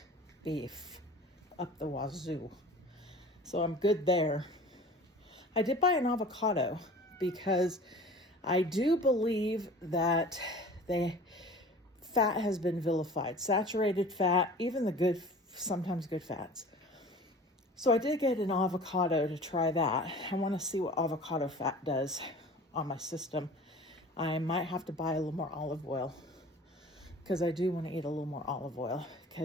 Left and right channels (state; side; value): normal; both; correlation 0.42